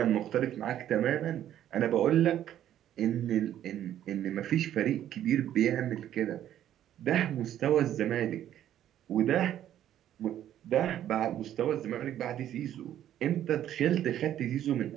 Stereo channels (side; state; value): left; quieter; 11.4 dB